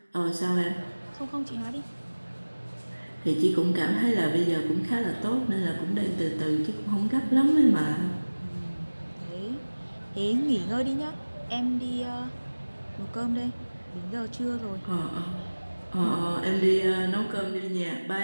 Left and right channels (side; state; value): both; inverted; correlation -1.00